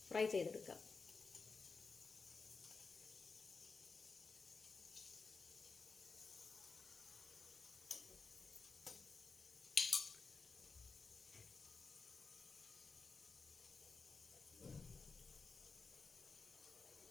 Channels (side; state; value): right; quieter; 4.5 dB